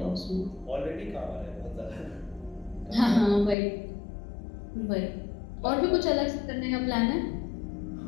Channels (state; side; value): drops out; right; at 3.6 s